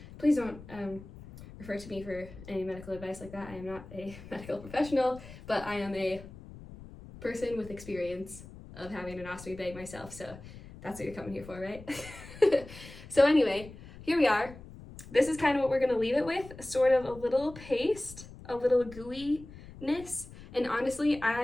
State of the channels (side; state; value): left; noise; rumble, 16 dB below the sound